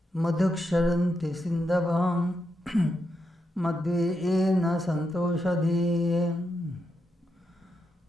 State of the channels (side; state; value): both; normal; correlation 0.84